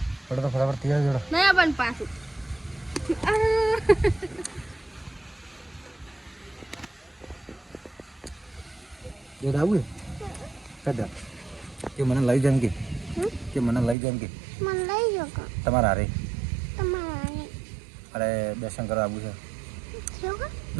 હડો તો ફટાફટ તૈયાર જોડો નહીં પણ પાછું જો આવું કદા કે મને લઈ જામ કે મને લઈ જામ કે તમારા હારે અરે દર્શન કરવા આવું છે.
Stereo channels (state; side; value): drops out; left; at 14.0 s